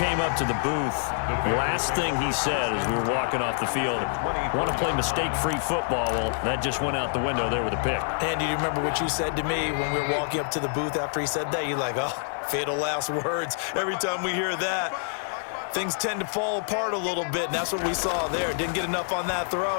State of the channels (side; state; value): right; silent; digital silence